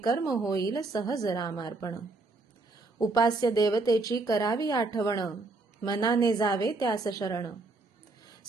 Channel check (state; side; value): quieter; left; 3.5 dB